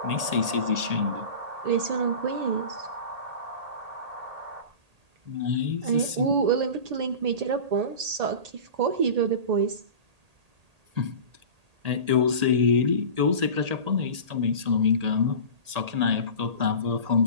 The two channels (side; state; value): left; late; 1.8 ms